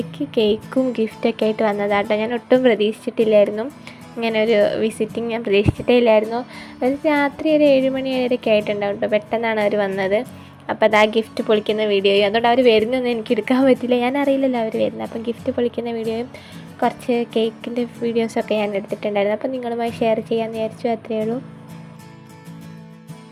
കേക്കും ഗിഫ്റ്റൊക്കെ ആയിട്ട് വന്നതാണ് കേട്ടോ. ഞാൻ ഒട്ടും പ്രതീക്ഷിച്ചിട്ടില്ലായിരുന്നു, ഇങ്ങനെ ഒരു വിസിറ്റിംഗ് ഞാൻ പ്രതീക്ഷിച്ചിട്ടേ ഇല്ലായിരുന്നു. ഒരു രാത്രി ഒരു 7 മണി വരെയൊക്കെ ആയിട്ടുണ്ടാവും കേട്ടോ. പെട്ടെന്നാണ് അവർ വന്നത്. അപ്പോൾ അത് ആ ഗിഫ്റ്റ് പൊളിക്കുന്ന വീഡിയോയും, അതുകൊണ്ട് അവർ വരുന്നൊന്നും എനിക്ക് എടുക്കാൻ പറ്റില്ല, ഞാൻ അറിയില്ലല്ലോ അവർ വരുന്നത്. അപ്പം ഗിഫ്റ്റ് പൊളിക്കുന്ന വീഡിയോയും കുറച്ച് കേക്കിൻ്റെ വീഡിയോസൊക്കെ ഞാൻ എടുത്തിട്ടുണ്ടായിരുന്നു. അപ്പം നിങ്ങളുമായി ഷെയർ ചെയ്യാമെന്ന് വിചാരിച്ചു, അത്രയേ ഉള്ളൂ.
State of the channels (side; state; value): both; identical; correlation 1.00